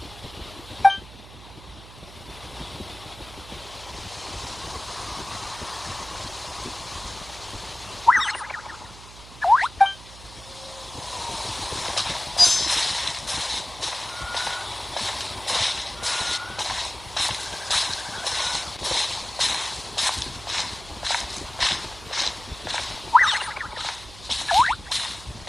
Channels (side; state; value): right; noise; hum, 18 dB below the sound